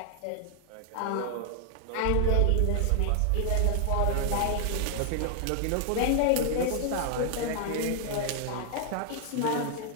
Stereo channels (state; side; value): different; both; correlation 0.00